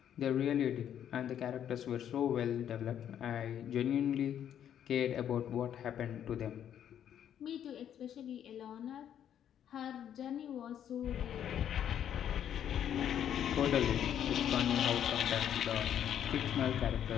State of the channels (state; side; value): quieter; right; 9.8 dB